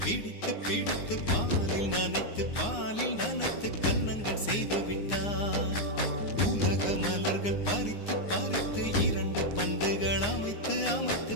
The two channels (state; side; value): late; right; 9.7 ms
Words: பிடித்து பிடித்து பாலில் நனைத்து கன்னங்கள் செய்து விட்டார். உலக மலர்கள் பறித்து பறித்து 2 பந்துகள் அமைத்து அமைத்து